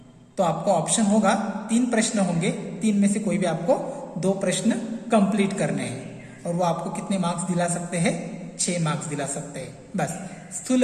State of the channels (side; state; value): both; identical; correlation 1.00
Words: तो आपको ऑप्शन होगा 3 प्रश्न होंगे, 3 में से कोई भी आपको 2 प्रश्न कंप्लीट करने हैं, और वो आपको कितने मार्क्स दिला सकते हैं, 6 मार्क्स दिला सकते हैं। बस स्थूल